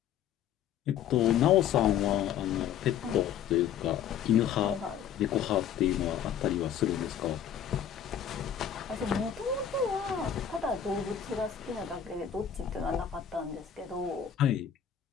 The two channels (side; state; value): right; quieter; 9.0 dB